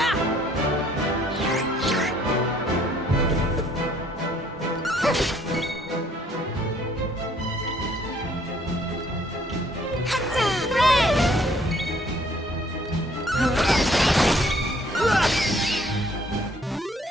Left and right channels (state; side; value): normal; both; correlation 0.62